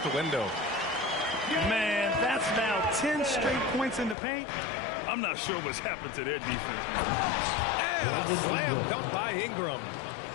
the window. Man, that's now 10 straight points in the paint. I'm not sure what's happened to their defense. And a slam dunk by Ingram.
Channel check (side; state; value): right; drops out; at 4.2 s